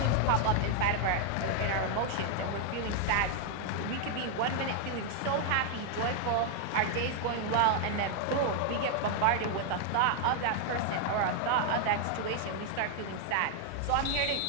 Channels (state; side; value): different; both; correlation 0.00